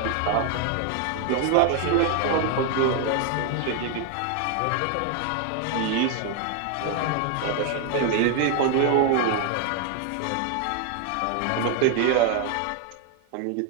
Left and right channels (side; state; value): both; different; correlation 0.01